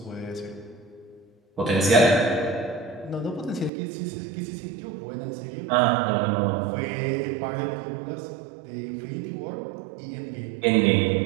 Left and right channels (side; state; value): left; drops out; at 3.7 s